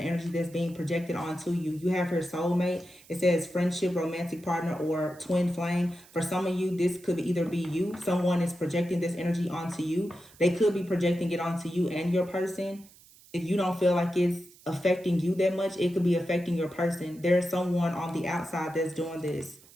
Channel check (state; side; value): noise; right; hiss, 25 dB below the sound